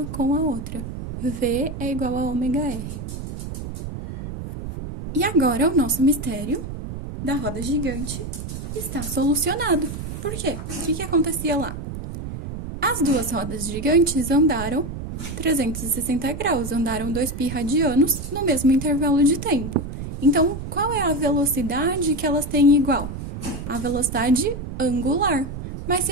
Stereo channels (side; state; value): right; noise; rumble, 8 dB below the sound